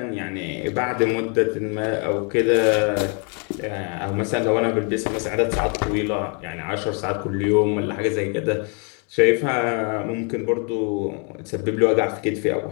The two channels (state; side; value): quieter; right; 37.2 dB